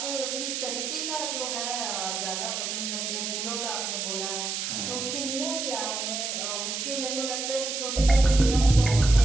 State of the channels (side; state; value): right; noise; hiss, 3 dB below the sound